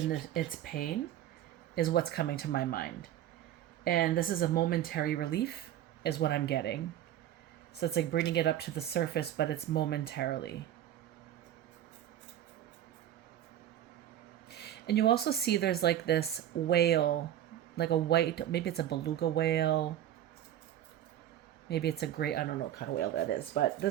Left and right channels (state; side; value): quieter; left; 11.7 dB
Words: its pain is what's coming to my mind. And this is a momentary relief, is what I'm getting. So it's like bringing it up to the surface, but it's momentarily. And you also see there's like this whale, like a white, maybe it's a beluga whale. Maybe it's a great, I don't know what kind of whale that is, but